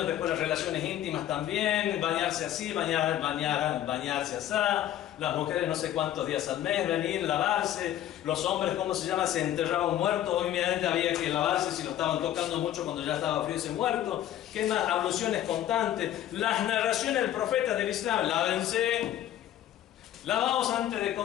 después las relaciones íntimas también, bañarse así, bañarse así, las mujeres no sé cuántos días al mes, venir, lavarse, los hombres, ¿cómo se llama? Se enterraba un muerto, obviamente había que lavarse si lo estaban tocando mucho cuando ya estaba frío ese muerto. ¿Qué más? Abluciones constantes, las narraciones del profeta del Islam, lávense, lavaos antes de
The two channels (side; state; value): right; quieter; 12.1 dB